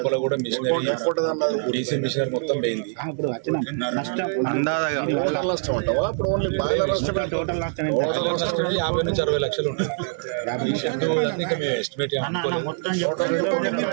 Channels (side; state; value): left; silent; 63 dB below the other